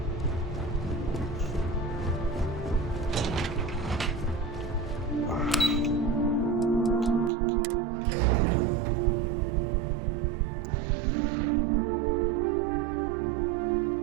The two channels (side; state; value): left; drops out; at 7.3 s